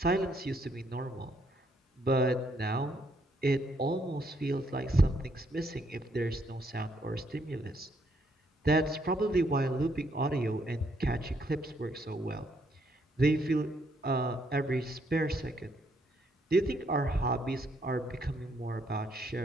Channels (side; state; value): both; normal; correlation 0.72